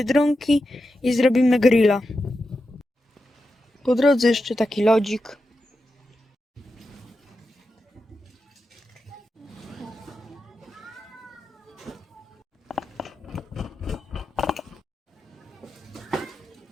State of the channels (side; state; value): both; normal; correlation 0.89